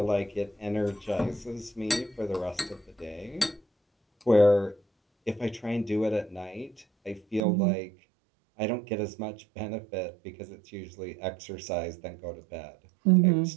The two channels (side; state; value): left; drops out; at 7.4 s